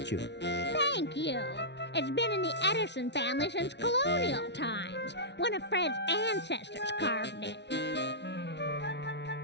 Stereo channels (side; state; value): right; late; 0.50 ms